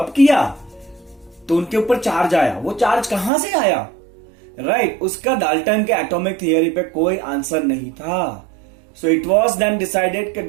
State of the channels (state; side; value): drops out; left; at 3.3 s